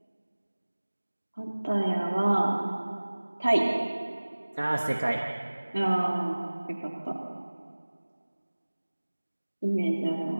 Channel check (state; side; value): inverted; both; correlation -1.00